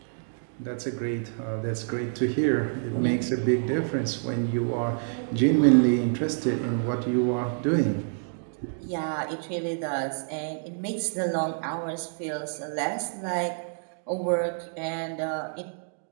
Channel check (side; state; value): left; silent; digital silence